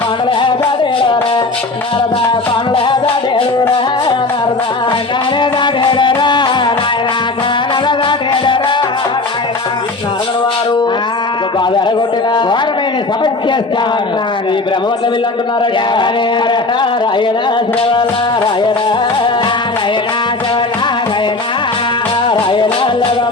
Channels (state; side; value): quieter; right; 3.3 dB